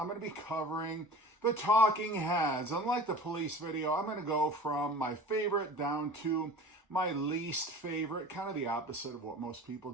going to be covering the Talking Heads. Unlike the Police video, I'm going to go from my favorite down to my least favorite, kind of the opposite of what most people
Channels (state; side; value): normal; both; correlation 0.39